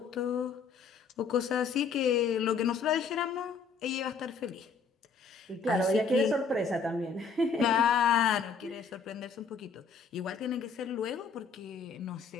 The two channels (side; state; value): right; quieter; 5.3 dB